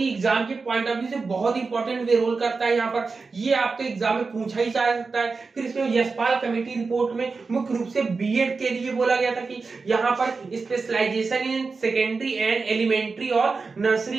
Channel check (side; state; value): left; quieter; 4.4 dB